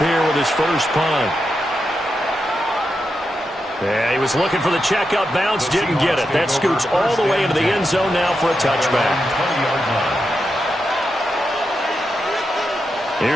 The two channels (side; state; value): both; normal; correlation 0.87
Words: here with his first punt. Yeah, he was looking for the checkup bounce, didn't get it. That scoots all the way into the end zone now for a touchback.